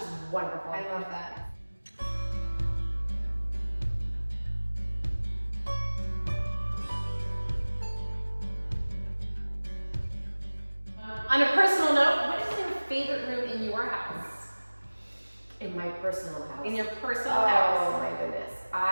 wonderful. I love that. On a personal note, what is your favorite room in your house? In my personal house. In your personal Oh house? my goodness.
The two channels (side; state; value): both; inverted; correlation -1.00